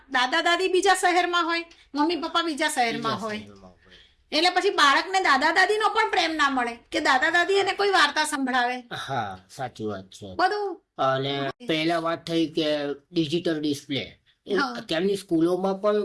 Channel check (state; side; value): identical; both; correlation 1.00